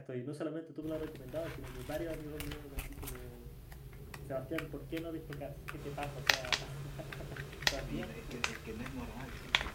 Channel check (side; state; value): both; identical; correlation 1.00